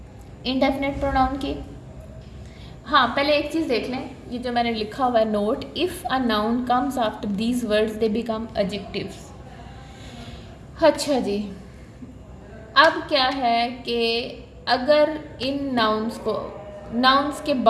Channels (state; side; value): identical; both; correlation 1.00